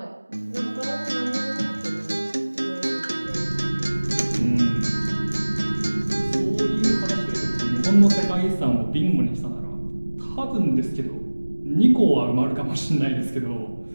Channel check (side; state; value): both; inverted; correlation -1.00